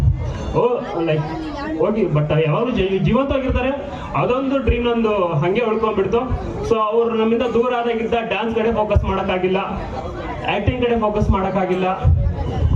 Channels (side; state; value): both; identical; correlation 1.00